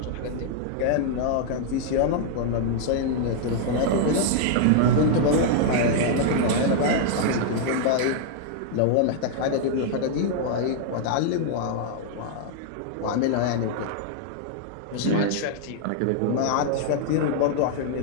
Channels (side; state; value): both; different; correlation -0.01